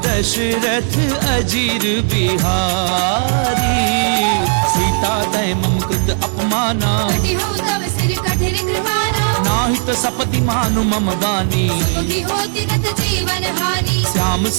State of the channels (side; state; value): left; silent; digital silence